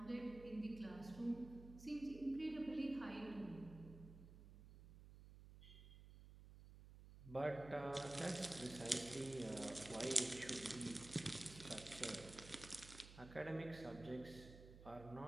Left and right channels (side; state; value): right; noise; hum, 15 dB below the sound